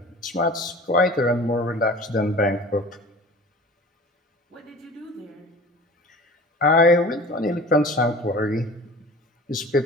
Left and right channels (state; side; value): normal; both; correlation 0.41